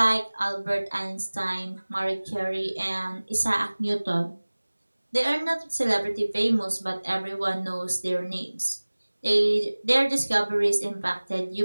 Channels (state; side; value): inverted; both; correlation -1.00